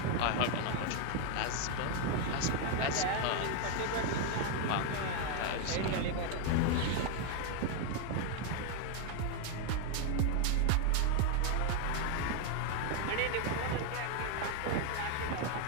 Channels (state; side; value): different; both; correlation 0.01